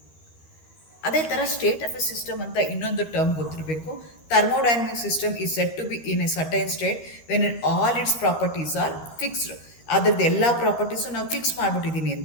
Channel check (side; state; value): right; late; 13 ms